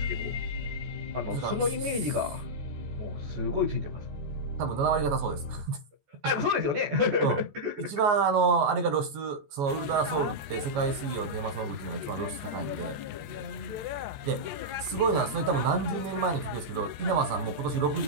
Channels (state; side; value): late; left; 14 ms